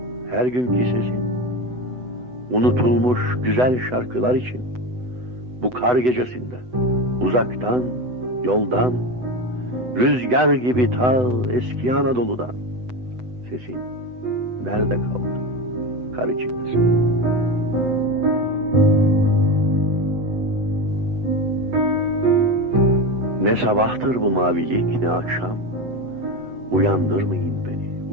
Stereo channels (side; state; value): left; late; 7.9 ms